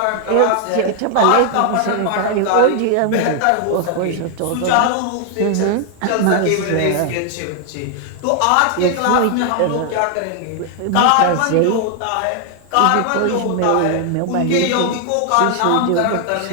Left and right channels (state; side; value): different; both; correlation 0.00